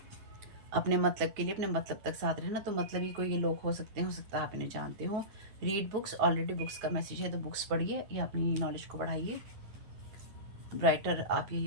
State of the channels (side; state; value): left; late; 9.4 ms